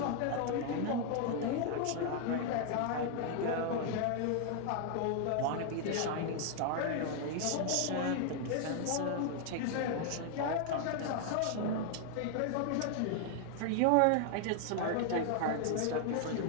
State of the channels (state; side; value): different; both; correlation 0.00